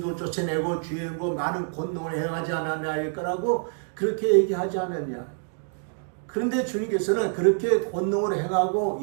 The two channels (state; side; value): silent; left; digital silence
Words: 쫓아내고 주의 이름으로 많은 권능을 행하지 않았냐 할 거라고 그렇게 얘기하지 않았냐. 그런데 주님께서는 그렇게 권능을 행하고